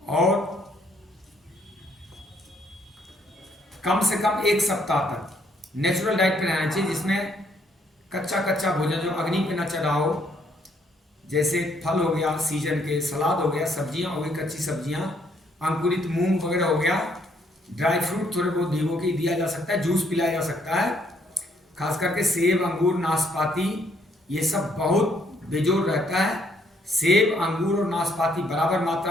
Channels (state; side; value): normal; both; correlation 0.69